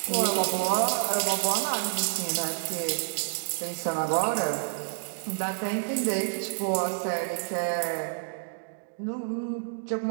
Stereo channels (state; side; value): silent; left; digital silence